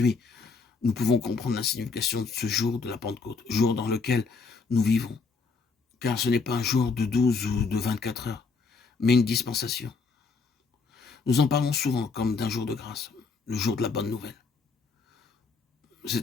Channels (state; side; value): quieter; right; 4.7 dB